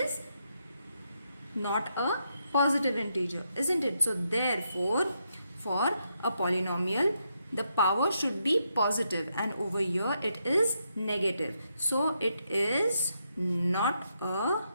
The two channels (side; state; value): both; inverted; correlation -0.80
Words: not a positive integer, isn't it? So therefore, for a polynomial, the power should be positive, and over here it is negative. So it is not a